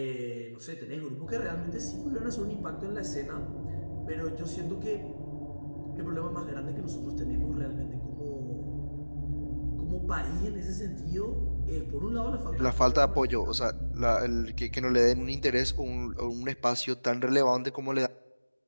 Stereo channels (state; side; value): inverted; both; correlation -1.00